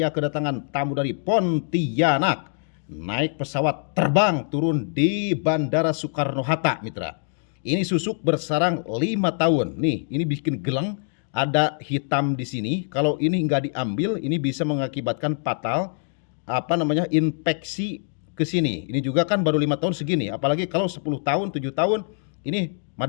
kedatangan tamu dari Pontianak. Naik pesawat terbang turun di Bandara Soekarno-Hatta, mitra. Ini susuk bersarang 5 tahun. Nih, ini bikin geleng, ada hitam di sini. Kalau ini nggak diambil, ini bisa mengakibatkan fatal infeksi ke sini. Ini juga kan baru 5 tahun segini. Apalagi kalau 10 tahun, 7 tahun, ini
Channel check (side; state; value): right; silent; digital silence